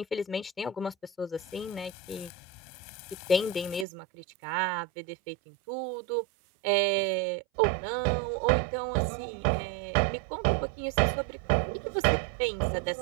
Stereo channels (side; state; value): left; drops out; at 3.9 s